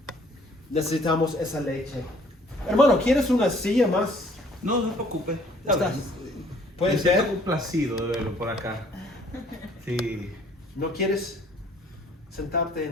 necesitamos esa leche. Hermano, ¿quieres una silla más? No, no se preocupe. Estás- ¿Puedes Me siento ver? complacido de verlo por acá. Sí. ¿No quieres sentarte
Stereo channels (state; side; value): normal; both; correlation 0.58